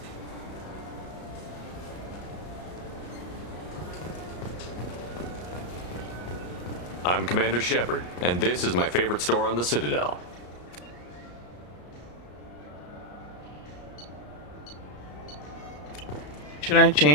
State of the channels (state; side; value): late; right; 34 ms